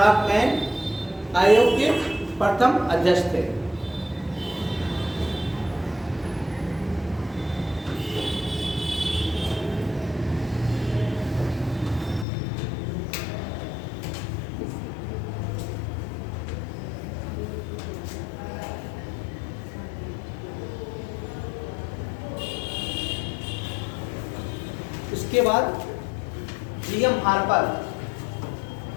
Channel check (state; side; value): drops out; right; at 12.2 s